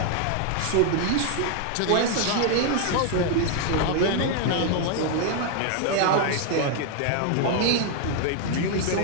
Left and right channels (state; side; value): different; both; correlation 0.00